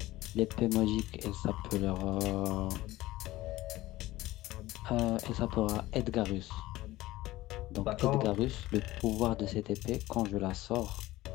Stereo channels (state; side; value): quieter; right; 17.3 dB